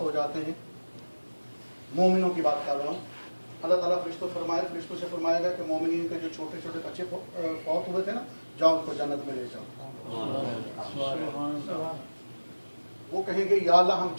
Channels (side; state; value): both; inverted; correlation -1.00